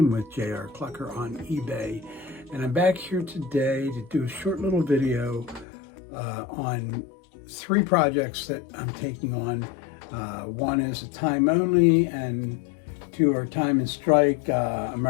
with JR Clocker on eBay. And I'm back here today to do a short little video on 3 projects that I'm taking on. One is a time only and 2 are time and strike,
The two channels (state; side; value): drops out; right; at 5.7 s